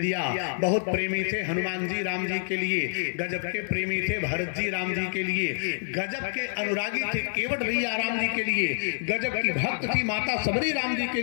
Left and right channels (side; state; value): right; silent; 60 dB below the other